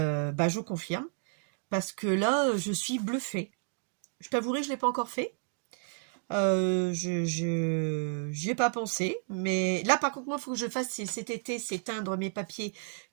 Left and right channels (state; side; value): silent; left; 56 dB below the other